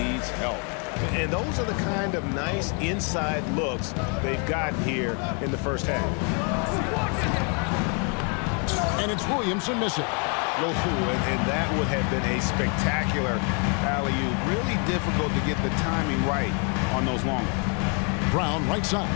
help. And those are the kind of nice inside looks they've gotten here in the first half. And it's Williamson missing. And that would have been a spectacular alley-oop. Really difficult to get the timing right on those long ones. Brown right side.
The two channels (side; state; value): right; quieter; 37.5 dB